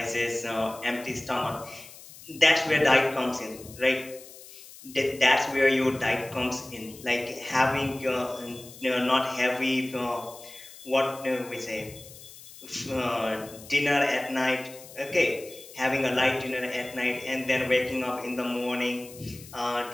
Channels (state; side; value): noise; left; hiss, 18 dB below the sound